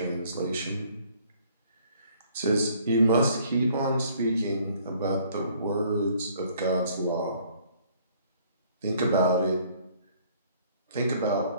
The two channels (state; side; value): inverted; both; correlation -0.60